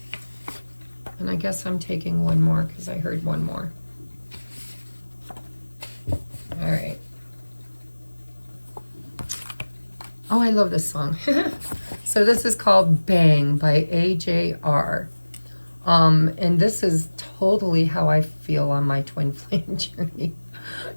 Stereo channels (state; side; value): inverted; both; correlation -1.00